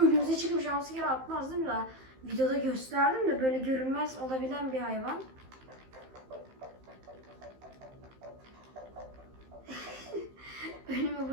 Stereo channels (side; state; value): left; late; 15 ms